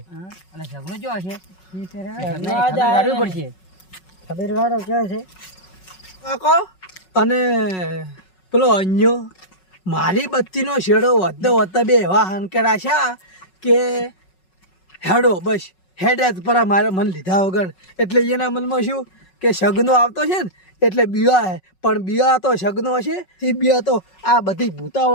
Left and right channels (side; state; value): right; late; 5.4 ms